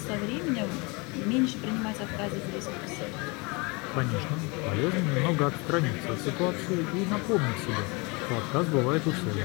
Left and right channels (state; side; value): quieter; right; 28.4 dB